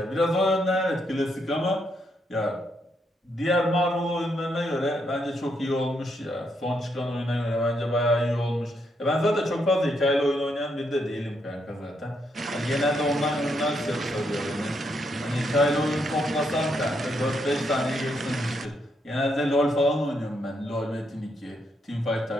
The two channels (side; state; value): both; normal; correlation 0.77